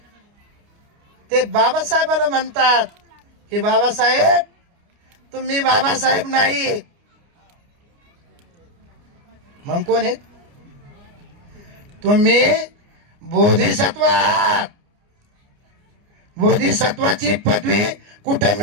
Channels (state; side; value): late; left; 29 ms